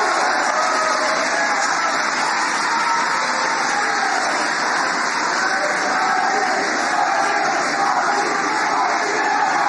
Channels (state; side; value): identical; both; correlation 1.00